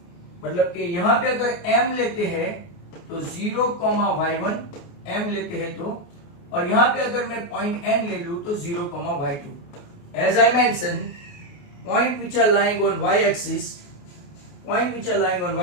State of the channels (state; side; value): late; right; 28 ms